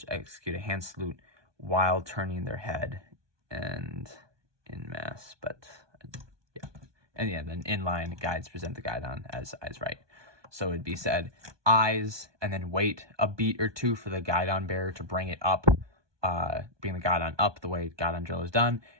execute a hand salute while turning their head and in mass. But yeah, and yeah, then in line, guides present the guidon as eyes right. So it'd be said eyes, and then wait a beat or two for the guidon bearer to bring it up. Bring the guidon up the way guidon drill is done,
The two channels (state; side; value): late; left; 1.2 ms